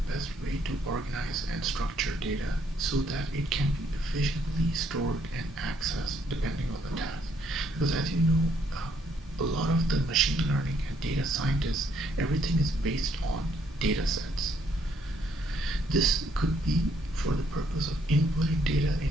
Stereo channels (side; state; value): both; normal; correlation 0.70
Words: best way to organize and structure data so that it can be efficiently stored and accessed depending on the task. Because as you know, a lot of the machine learning and data scientists, everything is based on data sets. This could be for the purpose of inputting data